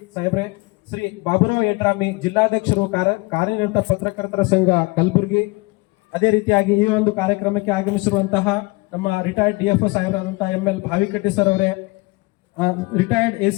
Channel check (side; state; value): right; quieter; 24.7 dB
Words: ಸಾಹೇಬ್ರೆ. ಶ್ರೀ ಬಾಬುರಾವ್ ಯಡ್ರಾಮಿ, ಜಿಲ್ಲಾಧ್ಯಕ್ಷರು ಕಾರ್ಯನಿರತ ಪತ್ರಕರ್ತರ ಸಂಘ ಕಲಬುರಗಿ. ಅದೇ ರೀತಿಯಾಗಿ ಈ ಒಂದು ಕಾರ್ಯಕ್ರಮಕ್ಕೆ ಆಗಮಿಸಿರುವಂತಹ ನಮ್ಮ ರಿಟೈರ್ಡ್ DFO ಸಾಹೇಬರಾದಂತಹ ML ಭಾವಿಕಟ್ಟಿ ಸರ್ ಅವರೇ, ರಿಟೈರ್ಡ್